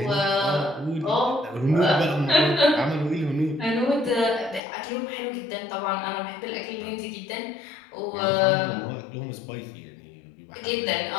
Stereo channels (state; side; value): drops out; right; at 4.6 s